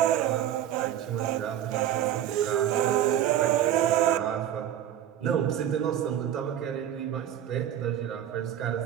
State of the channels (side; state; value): left; quieter; 10.8 dB